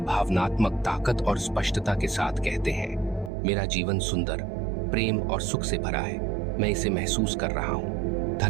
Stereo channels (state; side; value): drops out; left; at 3.3 s